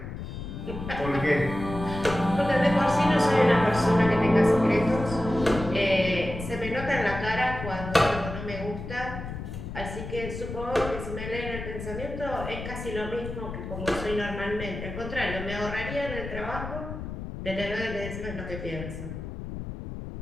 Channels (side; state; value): left; noise; rumble, 8 dB below the sound